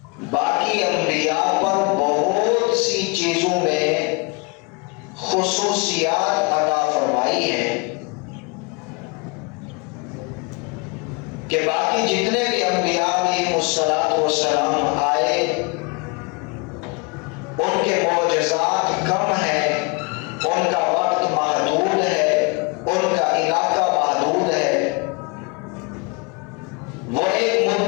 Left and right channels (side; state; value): right; quieter; 30.0 dB